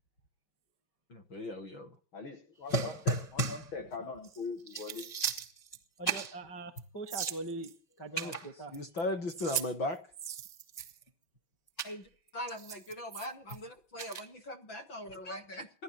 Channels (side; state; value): right; late; 5.6 ms